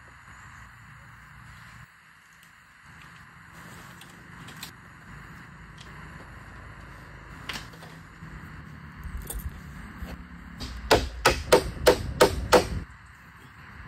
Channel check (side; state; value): both; identical; correlation 1.00